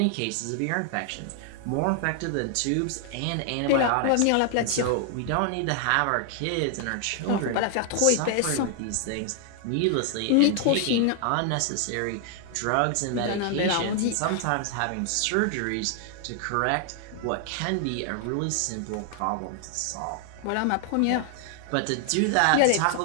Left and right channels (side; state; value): both; different; correlation 0.00